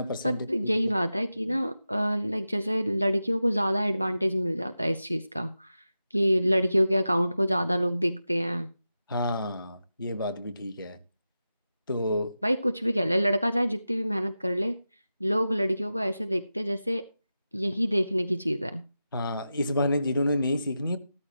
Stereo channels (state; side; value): inverted; both; correlation -0.92